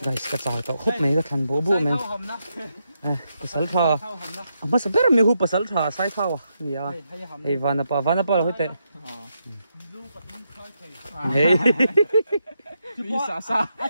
guys cái chảo tao khúc mấy cái thằng bố bố mình pasal tha mà sao bây giờ mình hút pasal tha sai thao à nhỉ hey vanapa là hết tệ hey đi xa xa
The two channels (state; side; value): inverted; both; correlation -0.82